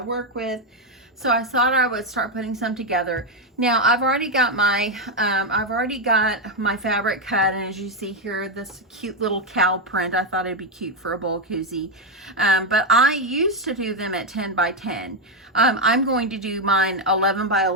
work with. So I thought I would start putting some together. Now I've already got my fabric cut, and as you see here, this cute little cow print. I thought it'd be cute for a bowl koozie, but I used to do them at 10 by 10. I'm going to do mine 11 by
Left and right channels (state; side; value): normal; both; correlation 0.05